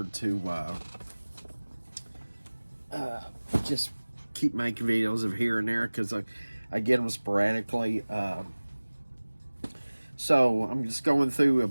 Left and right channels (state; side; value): inverted; both; correlation -1.00